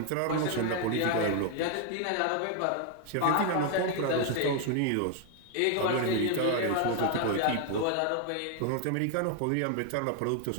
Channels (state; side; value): different; both; correlation 0.01